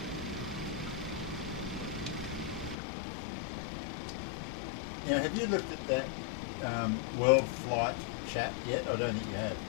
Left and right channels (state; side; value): drops out; right; at 2.8 s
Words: Now, have you looked at that World Flight chat yet? I don't think you have.